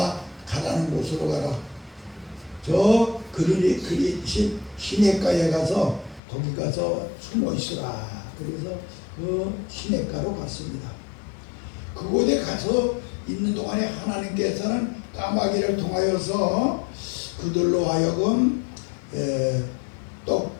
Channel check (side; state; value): right; drops out; at 6.2 s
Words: 가라는 곳으로 가라. 저 그리 시냇가에 가서 거기 가서 숨어 있으라. 그래서 그 시냇가로 갔습니다. 그곳에 가서 있는 동안에 하나님께서는 까마귀를 통하여서 그들로 하여금